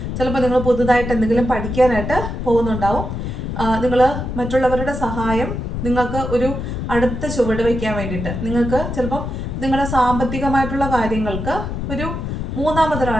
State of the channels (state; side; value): noise; left; rumble, 4 dB below the sound